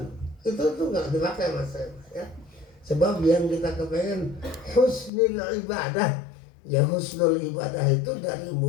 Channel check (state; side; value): drops out; right; at 5.1 s